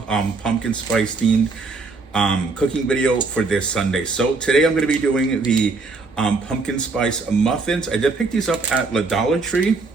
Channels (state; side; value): quieter; left; 4.0 dB